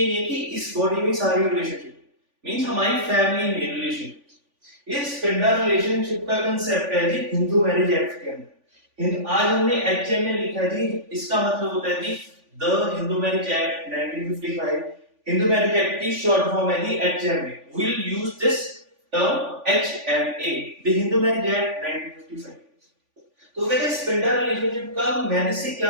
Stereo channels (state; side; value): late; left; 3.5 ms